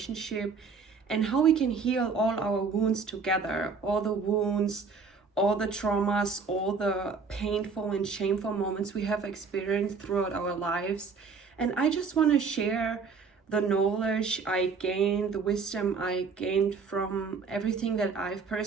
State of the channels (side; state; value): left; quieter; 5.1 dB